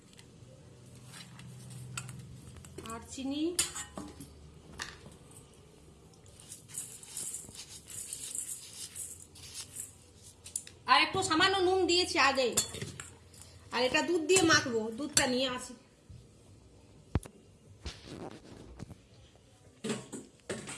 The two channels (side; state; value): both; identical; correlation 1.00